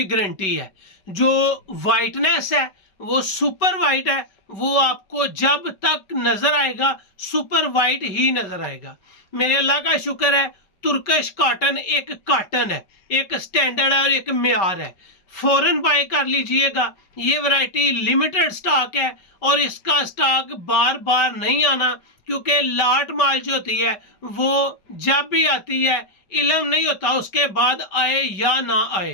गारंटी है। जो वाइटनेस है वो सुपर वाइट है, वो आपको जब तक नजर आएगा सुपर वाइट ही नजर आएगा। मेरे अल्लाह का शुक्र है, तुर्कश कॉटन एक कॉटन है, एक स्टैंडर्ड है और एक मेयार है। फौरन बाय कर लीजिएगा। ये वैरायटी लिमिटेड स्टॉक है और इसका स्टॉक बार बार नहीं आना, क्योंकि लाट माल जो होती है वो जब भी आती है इल्म नहीं होता उसके बाद आए या ना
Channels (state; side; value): late; right; 5.0 ms